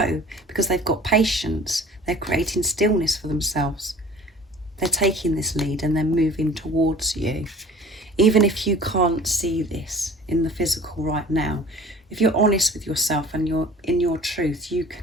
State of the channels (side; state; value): both; normal; correlation 0.46